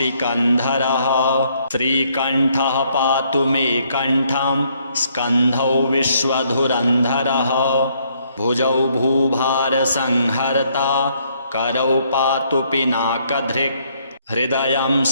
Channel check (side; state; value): both; inverted; correlation -0.69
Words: श्रीकण्ठः पातु मे कण्ठं स्कन्धौ विश्वधुरन्धरः भुजौ भूभारसंहर्ता करौ पातु पिनाकधृक् हृदयं